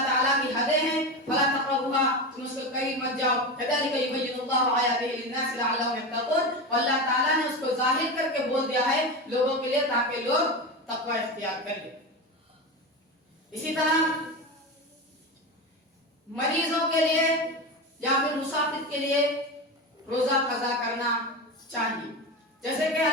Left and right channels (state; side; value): normal; both; correlation 0.21